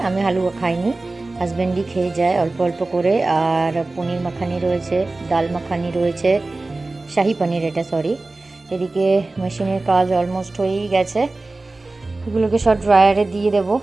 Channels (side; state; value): left; quieter; 3.2 dB